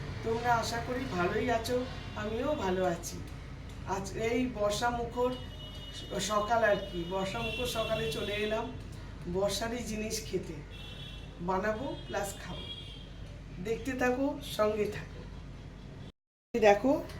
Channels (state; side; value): identical; both; correlation 1.00